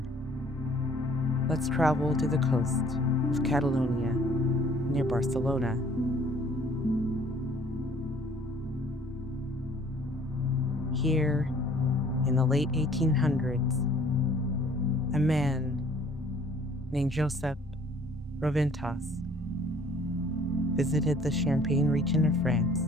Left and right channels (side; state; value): both; normal; correlation 0.56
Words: let's travel to the coast of Catalonia near Barcelona. Here, in the late 1800s, a man named Josep Roventas visited the Champagne region of